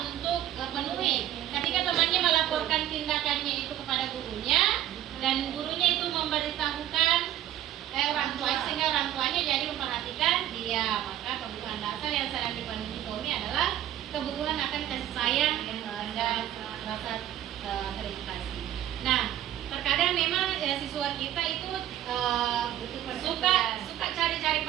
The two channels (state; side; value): quieter; left; 12.2 dB